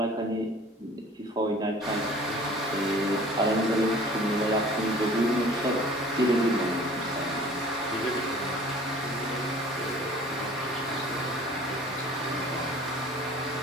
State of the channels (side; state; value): both; normal; correlation 0.48